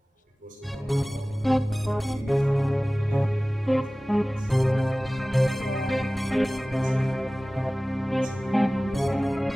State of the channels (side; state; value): both; normal; correlation 0.98